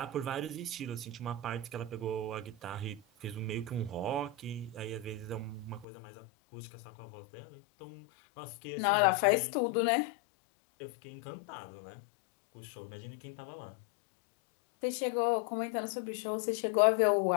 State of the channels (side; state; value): right; drops out; at 5.9 s